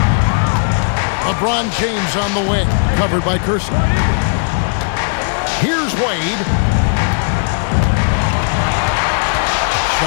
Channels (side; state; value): right; silent; digital silence